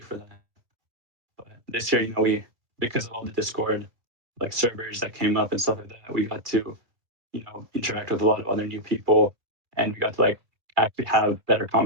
that. But this year, we because of all the Discord like servers that came up and stuff like that, we got to interact with a lot of other new people, and we got to like actually have better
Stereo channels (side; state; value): left; late; 2.3 ms